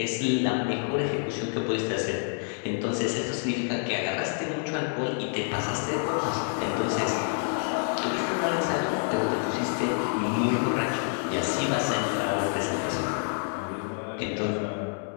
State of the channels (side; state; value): right; silent; 56 dB below the other